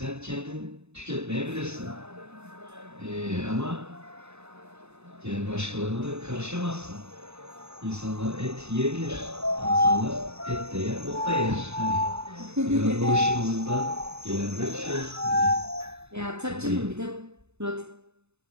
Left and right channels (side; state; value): left; late; 0.81 ms